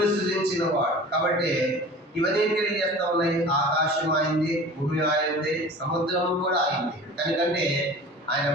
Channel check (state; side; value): normal; both; correlation 0.40